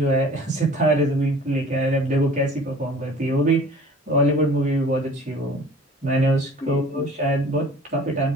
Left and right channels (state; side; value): normal; both; correlation 0.47